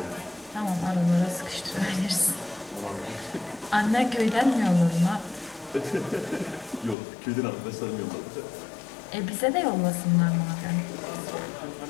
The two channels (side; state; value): right; drops out; at 7.0 s